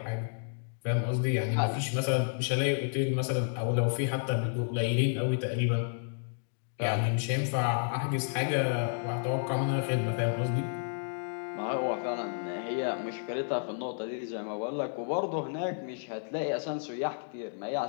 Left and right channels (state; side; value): silent; right; digital silence